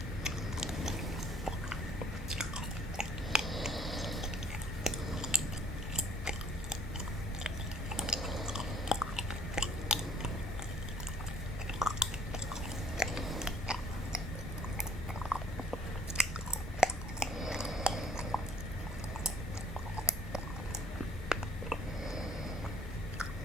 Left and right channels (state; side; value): normal; both; correlation 0.59